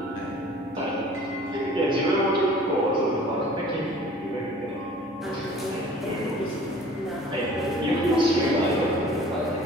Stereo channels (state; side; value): normal; both; correlation 0.48